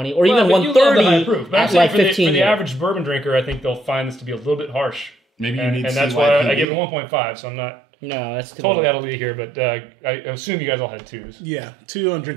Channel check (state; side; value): drops out; left; at 6.7 s